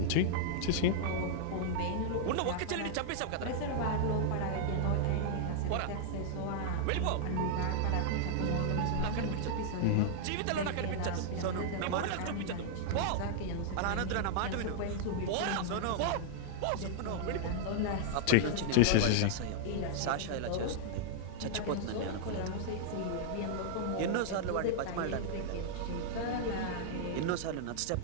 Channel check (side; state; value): both; different; correlation -0.01